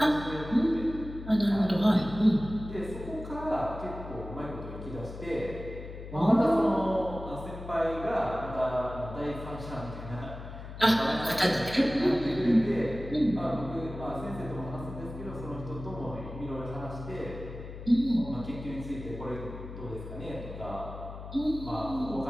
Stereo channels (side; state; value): left; noise; hum, 11 dB below the sound